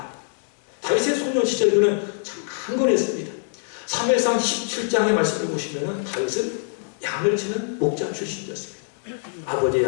다윗의 소년 시절 그는 참 강건했습니다. 사무엘상 17장의 말씀을 보시면 다윗은 양을 치는 목자 출신이었습니다. 아버지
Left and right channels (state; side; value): silent; right; digital silence